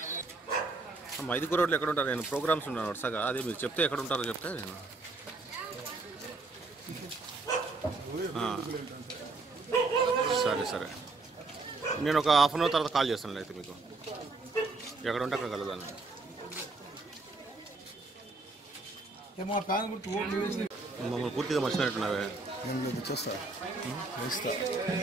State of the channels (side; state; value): left; quieter; 3.5 dB